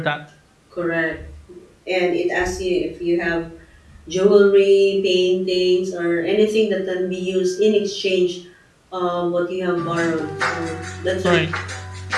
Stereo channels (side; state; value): both; identical; correlation 1.00